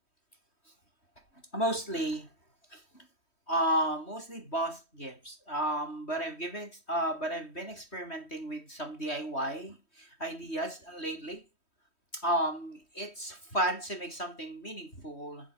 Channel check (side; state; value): right; late; 3.1 ms